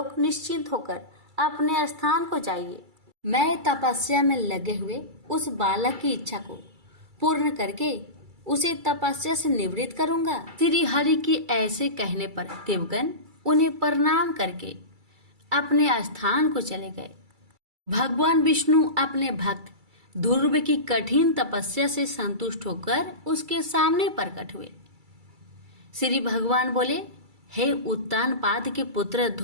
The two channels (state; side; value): late; left; 2.3 ms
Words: निश्चिंत होकर अपने स्थान को जाइए। मैं तपस्या में लगे हुए उस बालक की इच्छा को पूर्ण करके उसे तपस्या से निवृत्त करूंगा। श्री हरि की ऐसे कहने पर देवगण उन्हें प्रणाम करके अपने स्थान को चले गए। भगवान विष्णु अपने भक्त ध्रुव की कठिन तपस्या से संतुष्ट होकर उसके सामने प्रकट हुए। श्री भगवान बोले, हे उत्तानपाद के पुत्र